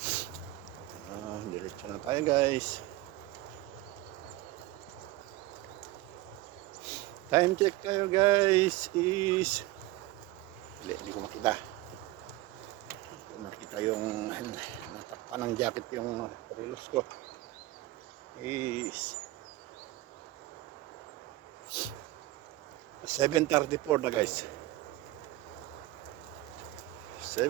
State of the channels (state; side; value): quieter; left; 18.1 dB